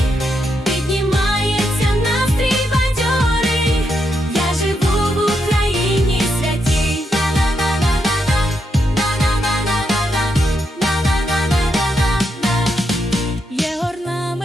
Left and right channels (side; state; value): both; normal; correlation 0.81